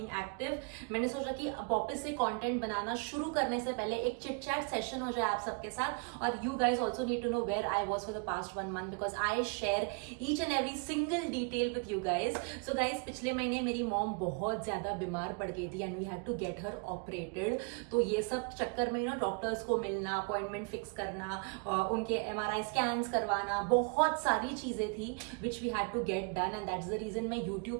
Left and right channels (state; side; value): quieter; left; 33.8 dB